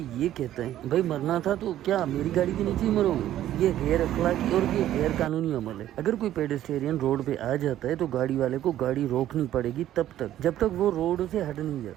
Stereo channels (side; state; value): left; quieter; 12.6 dB